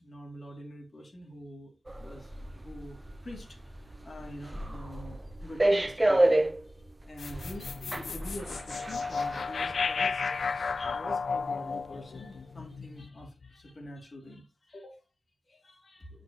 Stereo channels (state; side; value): normal; both; correlation 0.95